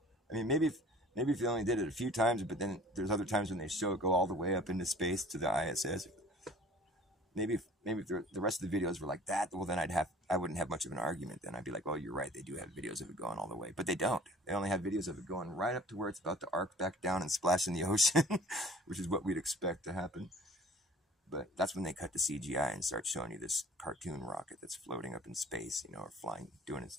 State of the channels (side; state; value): both; normal; correlation 0.48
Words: I mean, maybe if they only did it a few times, but then there's other times when they show it go all the way up into space to the ISS. Maybe if the rest of the videos were like that, well, then I wouldn't have much of an argument. Then I'd be like, oh, you're right. They do have videos of it going all the way, but they don't. They only have videos of it going right up to where it's about to arc back down and splash in the ocean, which is what we'd expect to happen. But that's when they cut to CGI and start showing you this cartoon rocket that's floating up in space, or flying, doing